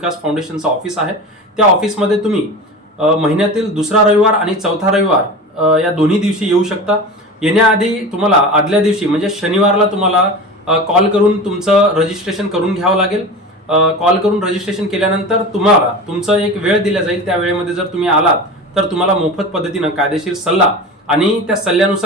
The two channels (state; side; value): normal; both; correlation 0.31